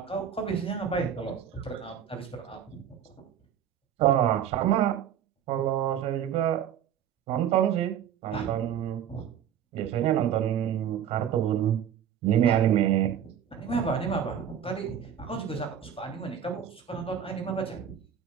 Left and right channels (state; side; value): quieter; left; 9.2 dB